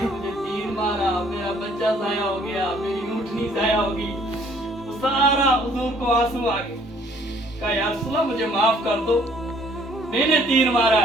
मुझे तीर मारा, मेरा बच्चा ज़ाया हो गया, मेरी ऊँटनी ज़ाया होगी। वो सारा हुजूर को आंसू आ गए। कहा या रसूलल्लाह मुझे माफ कर दो, मैंने तीर मारा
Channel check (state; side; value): normal; both; correlation 0.60